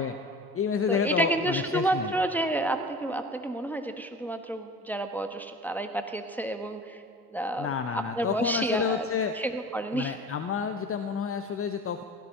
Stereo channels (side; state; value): both; normal; correlation 0.39